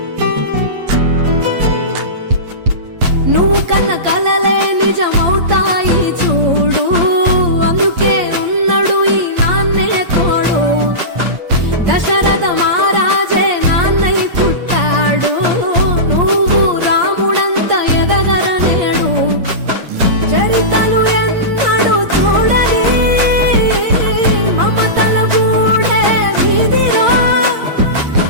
నువ్వు కన్న కలలే నిజమవుతాయి చూడు అందుకే ఉన్నాడు ఈ నాన్నే తోడు దశరథ మహారాజే నాన్నై పుట్టాడు నువ్వు రాముడంత ఎదగరనేడు చరితలు ఎన్నడు చూడని మమతల గూడే వీధిరో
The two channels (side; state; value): left; late; 8.6 ms